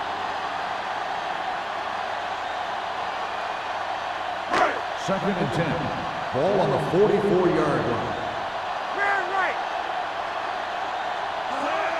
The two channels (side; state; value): both; identical; correlation 1.00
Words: Second and 10. Ball on the 44-yard line.